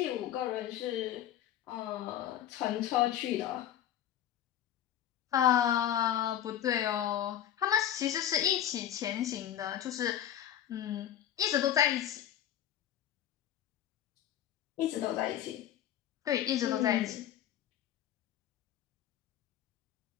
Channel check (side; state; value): right; quieter; 11.0 dB